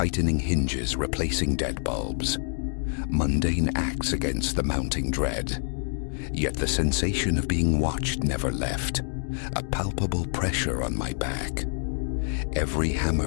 hinges, replacing dead bulbs. Mundane acts against the mounting dread. Yet the sensation of being watched never left. a palpable pressure on my back. Every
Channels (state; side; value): silent; right; digital silence